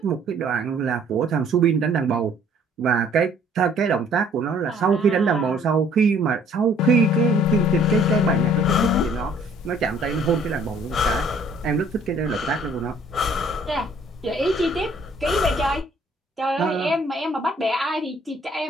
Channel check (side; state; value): both; normal; correlation 0.59